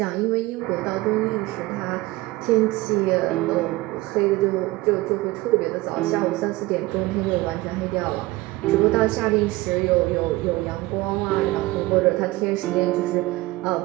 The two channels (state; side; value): quieter; left; 19.6 dB